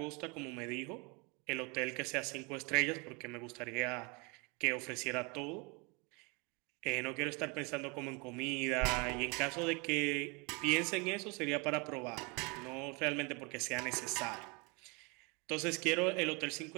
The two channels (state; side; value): quieter; left; 30.3 dB